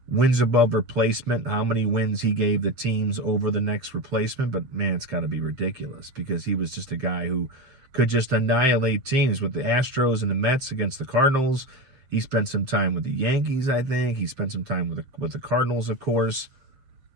wins above replacement, how many wins he gave the teams over the next replacement, but, man, it's got to be ridiculous because he was just a guy who could just annihilate teams with the Astros and the Mets against the Cardinals. He spent some time with the Yankees, I think. He spent some time with the Cardinals, of course.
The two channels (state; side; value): late; left; 7.6 ms